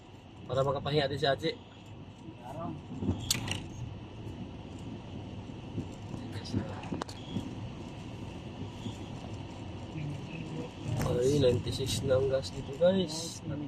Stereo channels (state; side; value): identical; both; correlation 1.00